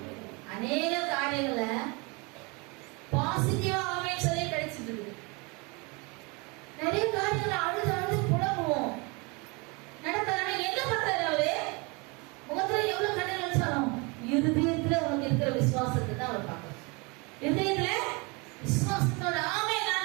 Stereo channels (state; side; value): quieter; left; 28.9 dB